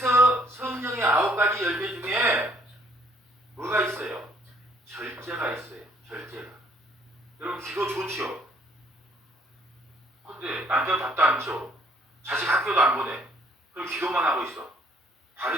성령의 9가지 열매 중에 뭐가 있어요? 절제가 있어요. 절제가. 여러분 기도 좋지요? 근데 남편 밥도 안 줘. 자식 학교도 안 보내. 그럼 기도만 하고 있어.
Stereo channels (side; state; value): both; normal; correlation 0.63